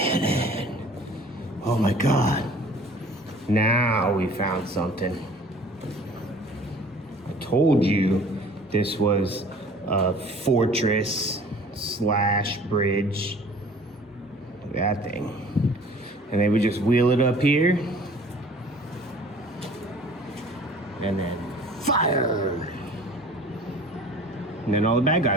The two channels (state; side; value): normal; both; correlation 0.49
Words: Oh my god! Now we found something. I told you this was a fortress slash bridge. Look at that thing. And they would just wheel it up here. And then fire! And then all the bad